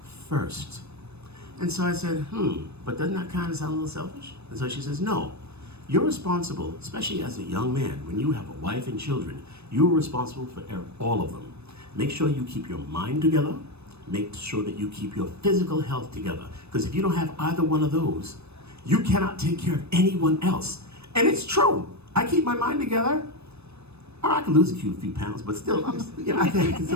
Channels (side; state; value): left; late; 0.80 ms